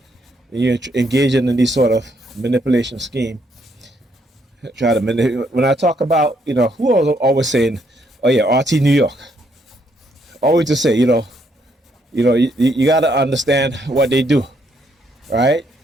you're engaging in these sort of manipulation scheme. Try to manipulate. When I talk about, who was always saying, oh yeah, RT New York. Always to say, you got to understand what they do, right?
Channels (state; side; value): normal; both; correlation 0.72